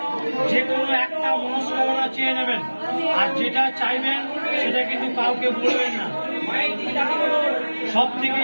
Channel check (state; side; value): inverted; both; correlation -1.00